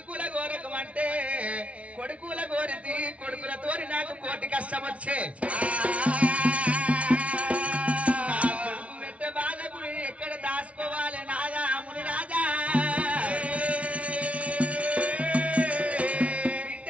గోరకమంటే కొడుకుల గోరితి కొడుకులతోని నాకు కోటి కష్టం వచ్చే కొడుకు పెట్ట బాధకు ఎక్కడ దాచుకోవాలి నాదాముని రాజా బిడ్డ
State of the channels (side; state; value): left; late; 0.064 ms